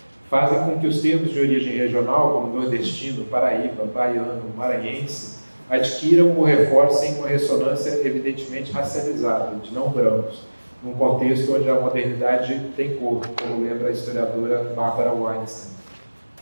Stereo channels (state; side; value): inverted; both; correlation -1.00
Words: fazem com que os termos de origem regional, como nordestino, paraíba, baiano, maranhense, adquiram ou reforcem uma ressonância evidentemente racializada, de não brancos, num contexto onde a modernidade tem cor, como lembra a historiadora Barbara Weinstein.